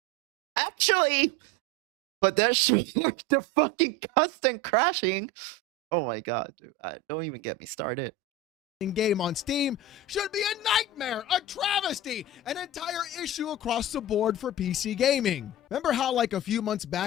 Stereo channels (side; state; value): both; normal; correlation 0.26